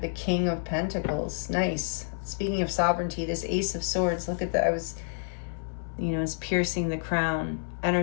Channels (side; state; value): right; silent; 59 dB below the other